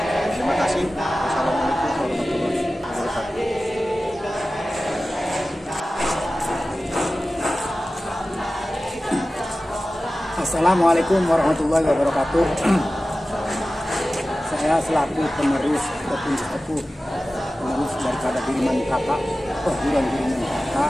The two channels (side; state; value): both; normal; correlation 0.95